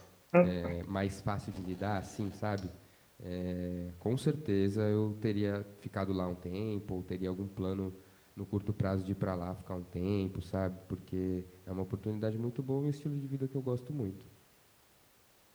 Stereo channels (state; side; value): identical; both; correlation 1.00